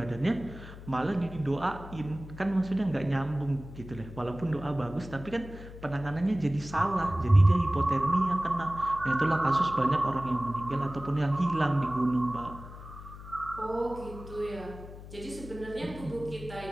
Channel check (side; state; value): left; noise; hum, 14 dB below the sound